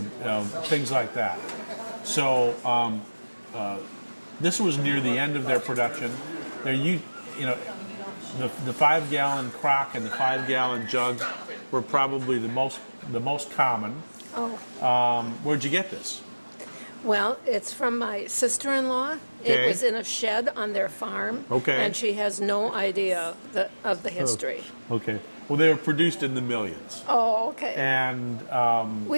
things like that. So This was near the end of their production. You know, the 5-gallon crock and the 5-gallon jug were probably the most common. Oh, Where'd you get this? well, it's from my sister-in-law. Okay. It was in a shed on their farm. Okay. And she has no idea of the history. Okay. Well, they were produced in the millions. Oh, okay. And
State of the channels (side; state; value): both; inverted; correlation -1.00